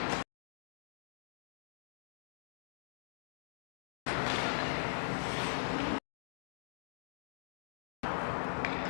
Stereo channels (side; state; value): right; silent; digital silence